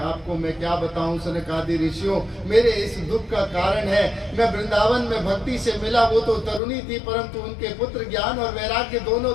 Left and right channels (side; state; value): right; drops out; at 6.6 s